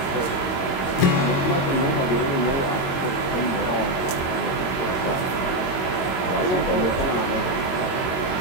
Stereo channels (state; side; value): late; right; 22 ms